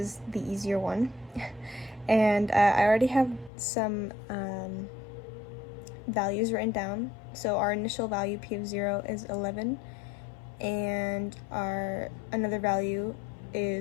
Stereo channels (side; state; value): right; drops out; at 3.5 s